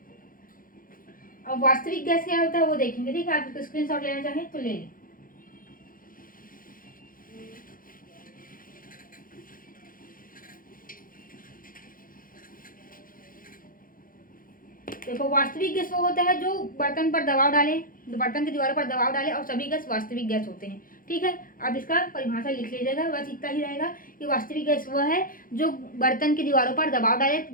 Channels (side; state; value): right; late; 0.40 ms